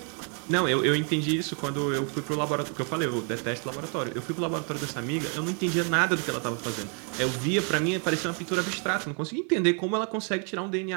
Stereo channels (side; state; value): left; quieter; 39.9 dB